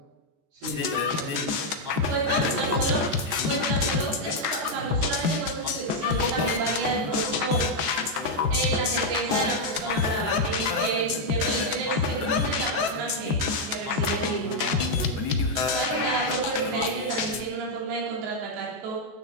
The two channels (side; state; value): left; late; 14 ms